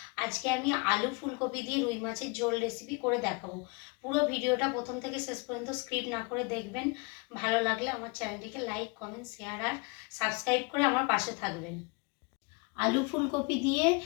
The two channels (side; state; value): right; quieter; 30.2 dB